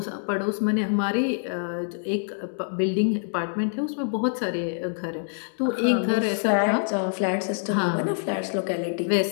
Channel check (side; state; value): right; silent; digital silence